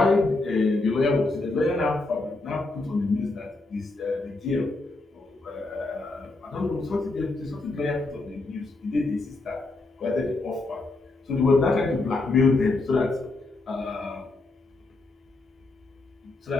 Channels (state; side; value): quieter; right; 3.2 dB